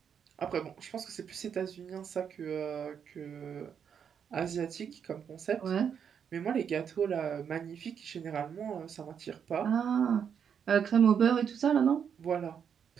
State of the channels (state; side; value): quieter; left; 7.6 dB